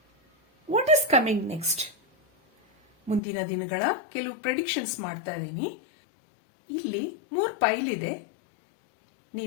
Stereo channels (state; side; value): drops out; right; at 3.2 s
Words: ವಾಟ್ ಈಸ್ ಕಮಿಂಗ್ ನೆಕ್ಸ್ಟ್, ಮುಂದಿನ ದಿನಗಳ ಕೆಲವು ಪ್ರೆಡಿಕ್ಷನ್ಸ್ ಮಾಡ್ತಾ ಇದ್ದೀನಿ. ಇಲ್ಲಿ 3 ಪೈಲ್ ಇದೆ.